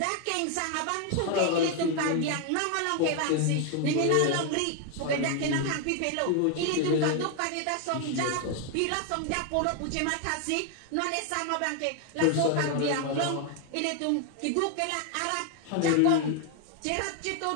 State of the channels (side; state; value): both; different; correlation 0.00